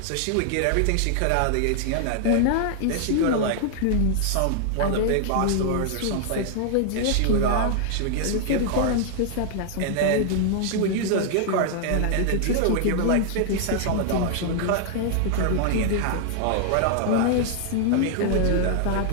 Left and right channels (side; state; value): both; different; correlation 0.00